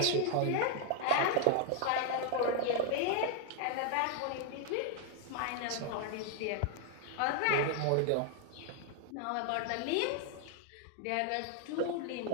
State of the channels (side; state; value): both; different; correlation 0.00